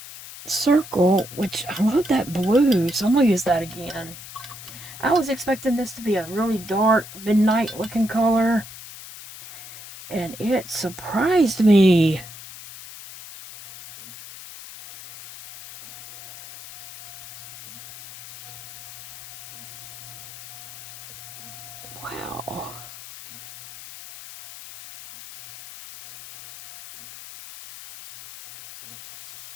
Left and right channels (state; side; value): noise; left; hiss, 15 dB below the sound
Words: circle, which I love that blue, so I'm going to use that again. I was expecting this to be a really dark, midnight looking color, and it surprised me. Wow.